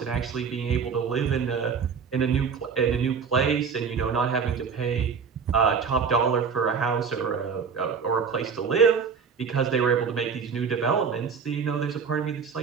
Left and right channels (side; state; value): left; quieter; 6.1 dB